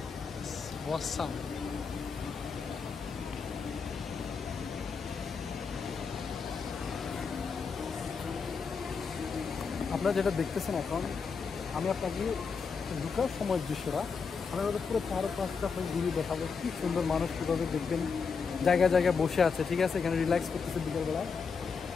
it's awesome. আপনারা যেটা দেখতেছেন এখন, আমি আপনাকে ঢুকার সময়ের দৃশ্যটা আমি আমাদের পুরো 4-5টা ঘুরিয়ে দেখাবো। কি সুন্দর মানুষ কীভাবে দেখবেন জায়গায় জায়গায় বসে আছে, ঠিক আছে? এখানে রিল্যাক্স করতেছে বিকেলবেলা।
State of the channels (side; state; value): right; quieter; 5.5 dB